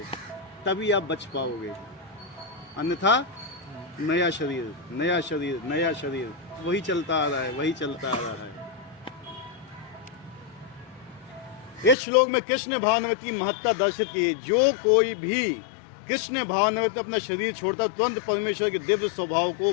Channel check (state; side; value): drops out; right; at 12.0 s